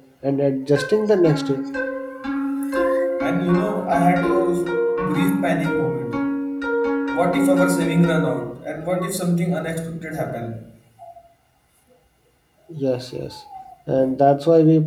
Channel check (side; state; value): both; identical; correlation 1.00